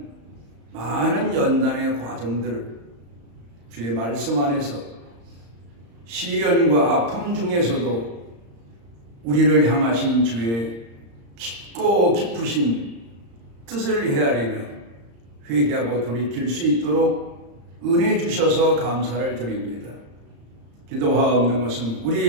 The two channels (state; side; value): late; left; 35 ms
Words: 많은 연단의 과정들을 주의 말씀 안에서 시련과 아픔 중에서도 우리를 향하신 주의 깊고 깊으신 뜻을 헤아리며 회개하고 돌이킬 수 있도록 은혜 주셔서 감사를 드립니다. 기도하옵는 것은